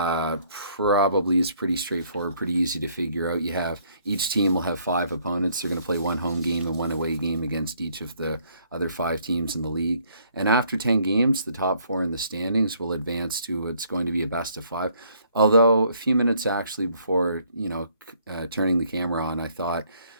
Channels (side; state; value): both; inverted; correlation -0.65